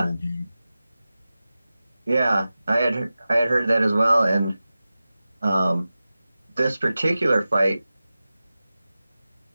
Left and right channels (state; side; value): inverted; both; correlation -0.95